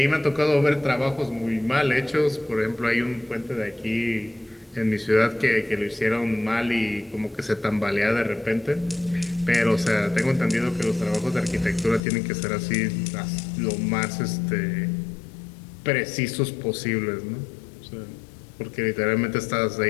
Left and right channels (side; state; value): right; drops out; at 12.0 s